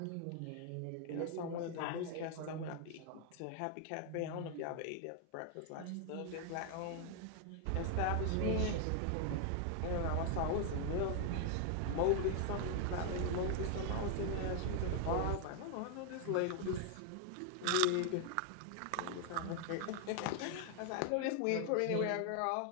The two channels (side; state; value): both; different; correlation 0.00